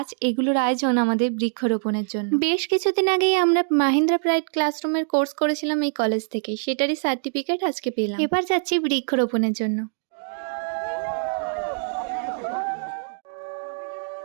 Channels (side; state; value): left; silent; digital silence